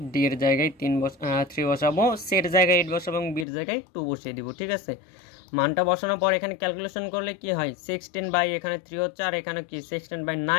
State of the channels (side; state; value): right; drops out; at 3.5 s